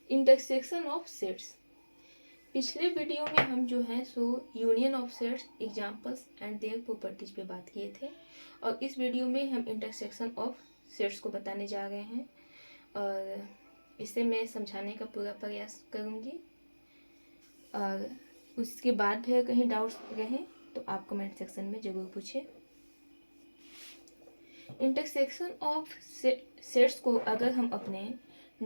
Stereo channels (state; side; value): inverted; both; correlation -1.00